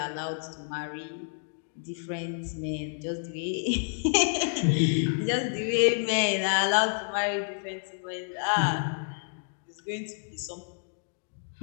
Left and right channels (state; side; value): silent; right; digital silence